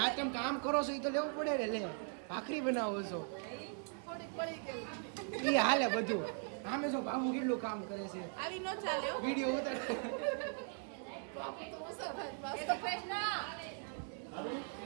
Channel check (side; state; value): left; silent; 51 dB below the other